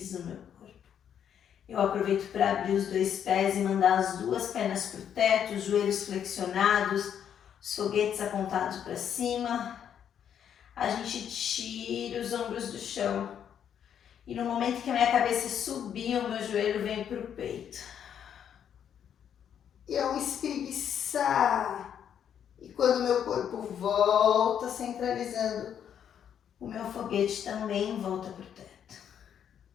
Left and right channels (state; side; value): quieter; right; 8.9 dB